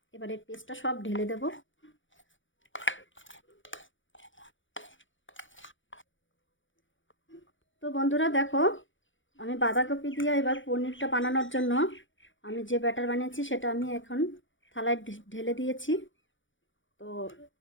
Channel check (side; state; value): right; late; 0.56 ms